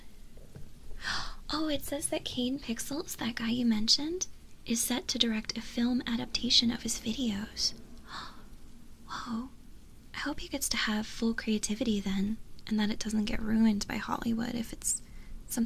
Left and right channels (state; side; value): identical; both; correlation 1.00